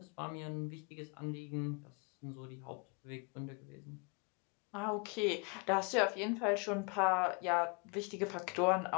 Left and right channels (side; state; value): right; quieter; 32.6 dB